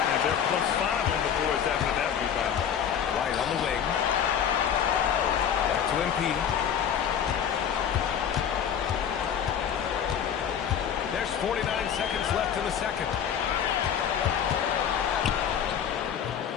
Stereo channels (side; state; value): right; quieter; 8.5 dB